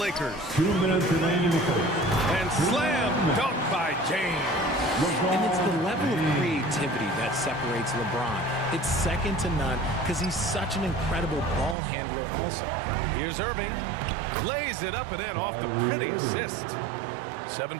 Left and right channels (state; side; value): drops out; left; at 11.8 s